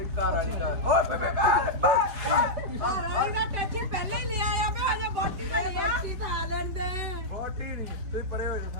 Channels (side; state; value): left; late; 4.7 ms